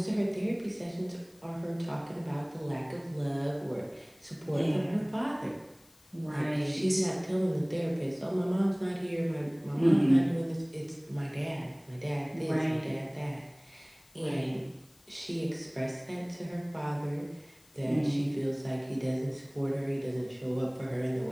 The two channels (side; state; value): left; noise; hiss, 29 dB below the sound